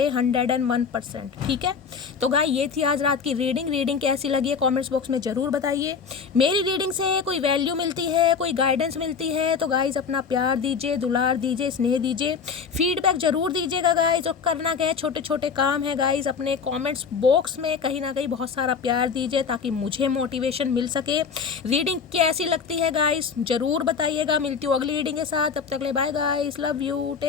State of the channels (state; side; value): quieter; right; 5.9 dB